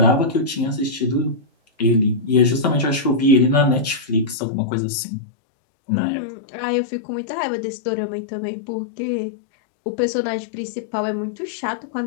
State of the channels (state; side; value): drops out; right; at 4.4 s